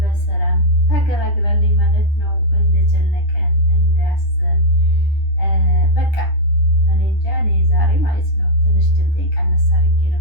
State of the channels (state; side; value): late; right; 10 ms